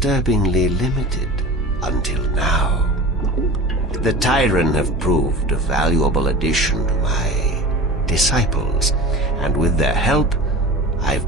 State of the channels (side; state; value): both; normal; correlation 0.35